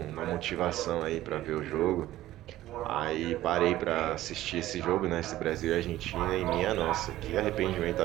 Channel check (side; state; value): left; quieter; 14.9 dB